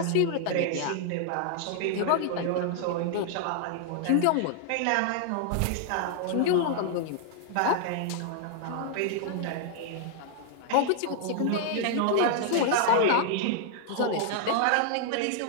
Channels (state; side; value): different; both; correlation 0.00